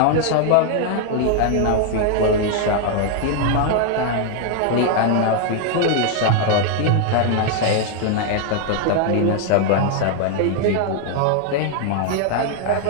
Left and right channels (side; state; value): both; different; correlation 0.00